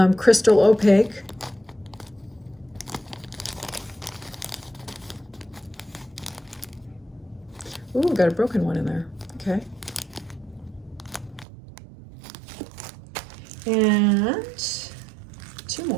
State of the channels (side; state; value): left; drops out; at 11.5 s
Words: crystal opaque. Ooh, got a broken one in there. Okay. And two